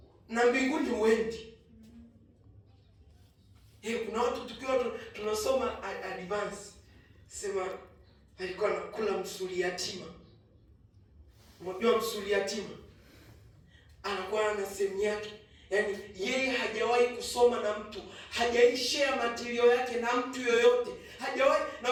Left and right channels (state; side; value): identical; both; correlation 1.00